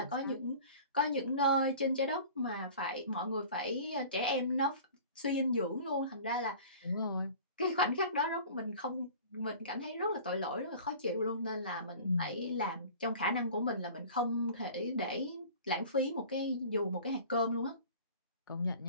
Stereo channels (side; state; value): both; inverted; correlation -0.43